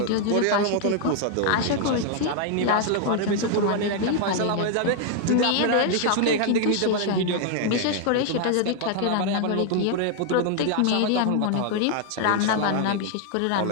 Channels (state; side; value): different; both; correlation 0.00